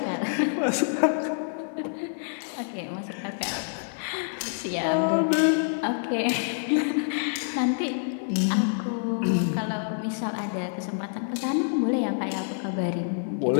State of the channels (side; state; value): right; silent; digital silence